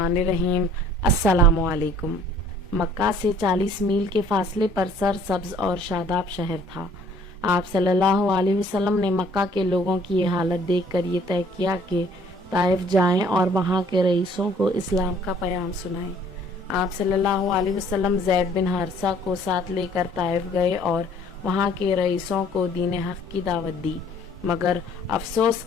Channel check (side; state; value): both; normal; correlation 0.57